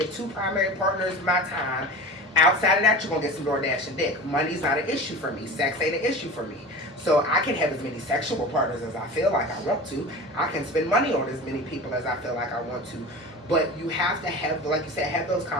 2 primary partners my time. Outside of that, you're gonna get some DoorDash and dick. Money's not an issue for me. Sex ain't an issue for me. So I can have as many sexual partners as I feel like I want to. I can spend money on as many people as I feel like I want to. But you have to have, like you said, have those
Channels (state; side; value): normal; both; correlation 0.34